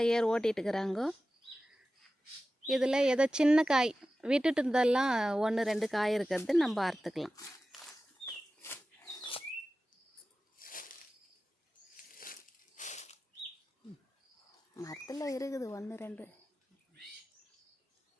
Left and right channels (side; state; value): both; normal; correlation 0.94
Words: ஏர் ஓட்டிகிட்டு இருக்கிறாங்க. இதில் ஏதோ சின்ன காய் விட்டுட்டு இருந்தெல்லாம் 1 2 காய் இருக்கிறது நம்ம அறுத்துக்கலாம். மரத்தில் இருக்குது 1 2.